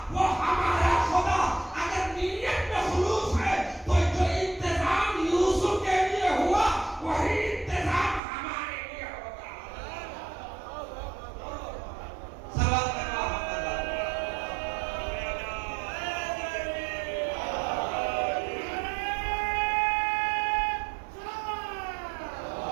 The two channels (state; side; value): drops out; left; at 8.2 s